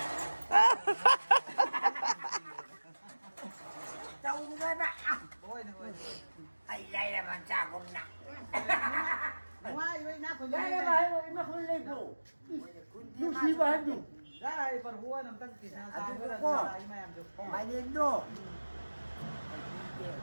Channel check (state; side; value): inverted; both; correlation -1.00